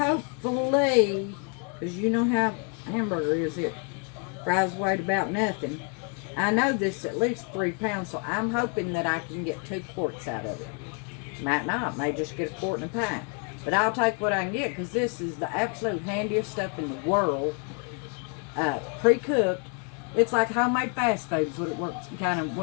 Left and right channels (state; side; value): quieter; right; 37.2 dB